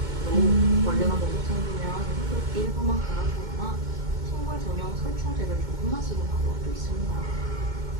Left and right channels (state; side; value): late; left; 2.2 ms